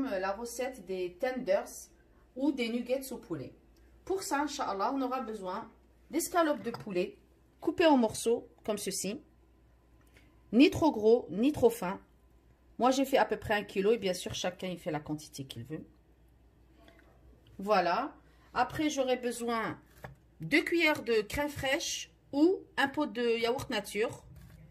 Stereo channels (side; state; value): both; identical; correlation 1.00